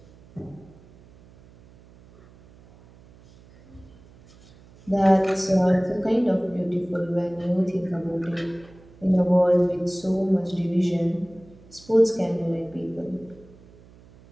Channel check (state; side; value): noise; right; hum, 25 dB below the sound